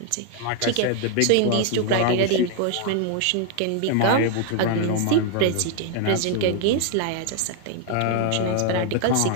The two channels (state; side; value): different; both; correlation 0.00